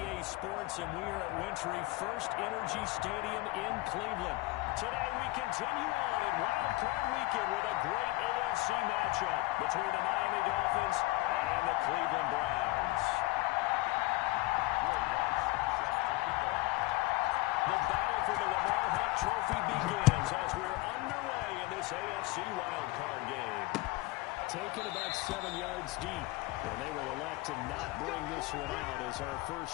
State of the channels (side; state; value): right; quieter; 20.9 dB